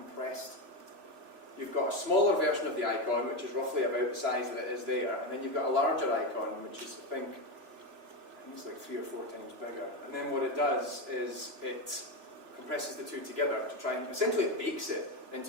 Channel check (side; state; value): left; late; 3.0 ms